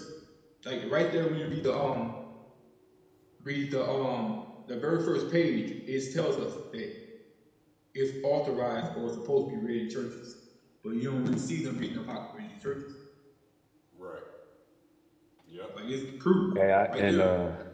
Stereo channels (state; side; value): identical; both; correlation 1.00